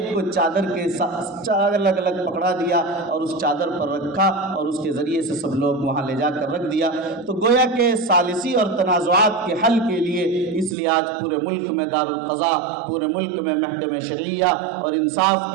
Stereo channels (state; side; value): drops out; left; at 10.8 s